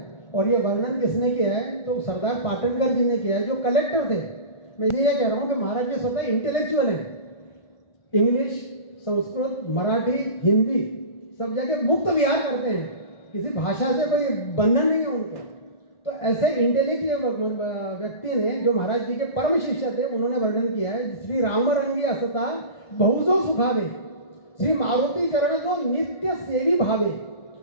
और ये वर्णन किसने किया है तो सरदार पाटनकर जी ने किया है, जो कलेक्टर थे। मैं ये कह रहा हूँ कि महाराज जी स्वतः इंटेलेक्चुअल हैं, इंग्लिश, संस्कृत, मराठी, हिंदी सब जगह मुक्त विहार करते हैं, किसी भाषा से कोई बंधन नहीं है उनको। तो ऐसे इंटेलेक्चुअल व्यक्ति ने, जो महाराज जी के परम शिष्य थे, उन्होंने वर्णन किया है, श्री राम रंगी असता बहुतो सुखावे, श्री मारुती चरण जो नित्य सेवी भावे,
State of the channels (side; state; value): right; late; 1.5 ms